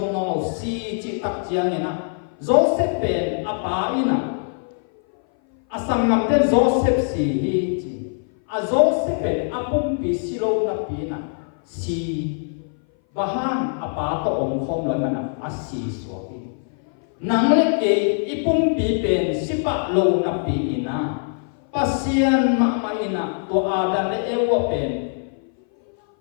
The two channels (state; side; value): silent; right; 58 dB below the other